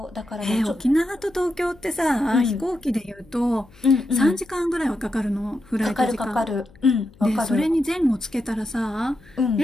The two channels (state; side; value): noise; left; hum, 26 dB below the sound